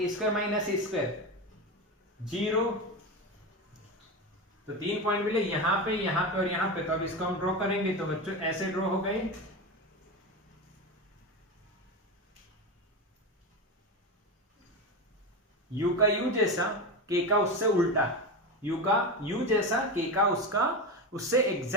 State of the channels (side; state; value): both; normal; correlation 0.19